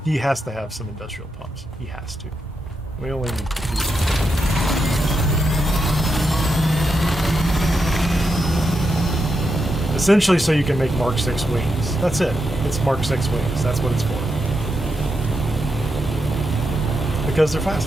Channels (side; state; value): both; normal; correlation 0.85